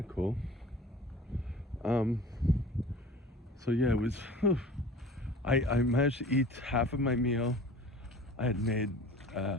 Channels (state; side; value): normal; both; correlation 0.42